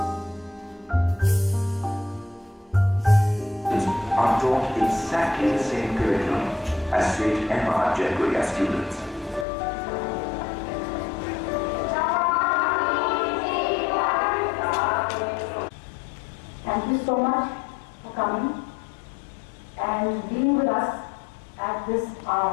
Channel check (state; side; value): drops out; right; at 9.5 s